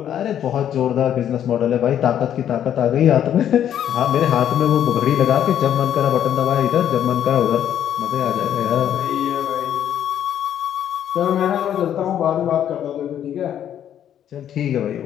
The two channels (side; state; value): right; quieter; 10.1 dB